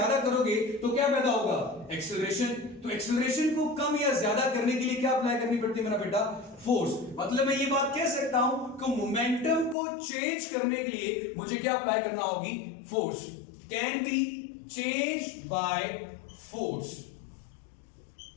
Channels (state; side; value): drops out; right; at 9.8 s